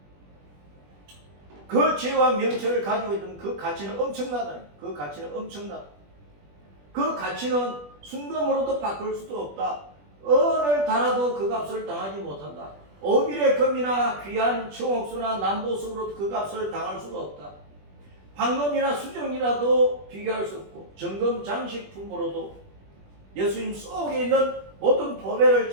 지혜와 명철을 가지고 있는 그 가치는 엄청나다. 그 가치는 순금으로도 바꿀 수도 없다. 어느 달아도 그 값을 당하지 못한다. 오빌의 금이나 귀한 청옥수나 남보석으로 그 값을 당할 수가 없다. 황금이나 수정이라도 비교할 수 없고 정금 장식품으로도 예수님 속에 있는 모든 보배를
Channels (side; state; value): left; late; 20 ms